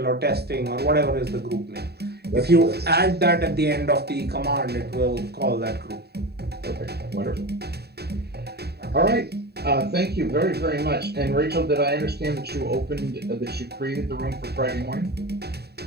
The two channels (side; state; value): left; late; 0.47 ms